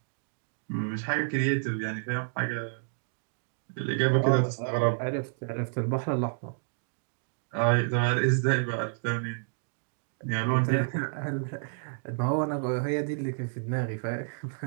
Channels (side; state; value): left; silent; digital silence